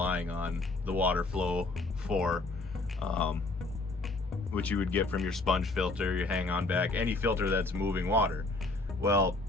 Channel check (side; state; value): right; quieter; 3.3 dB